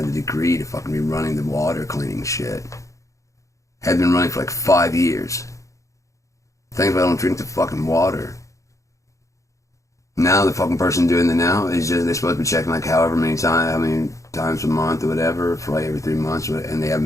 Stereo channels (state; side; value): late; right; 0.15 ms